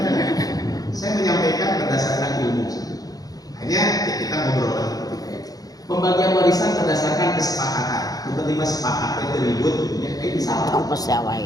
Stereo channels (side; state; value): right; late; 0.18 ms